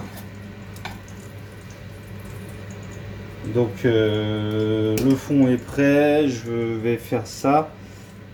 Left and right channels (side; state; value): both; identical; correlation 1.00